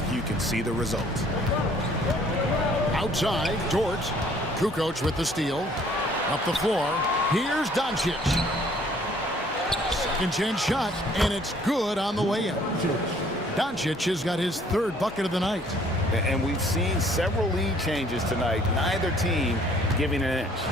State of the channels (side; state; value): both; normal; correlation 0.59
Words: you can see the result. Outside, Dort. Kukoc with the steal. Up the floor. Here's Doncic. Second chance shot, and it's good on the way in. Doncic has got his third bucket of the night. And we've seen several lead changes tonight. Neither team giving an inch.